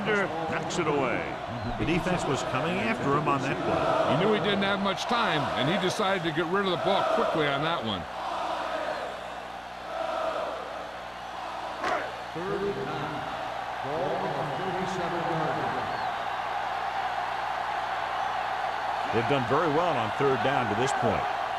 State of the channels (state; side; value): identical; both; correlation 1.00